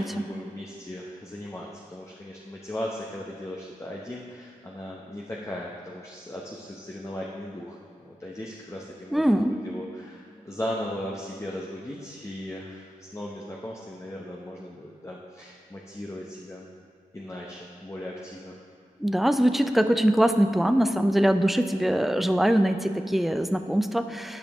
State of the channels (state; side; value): normal; both; correlation 0.95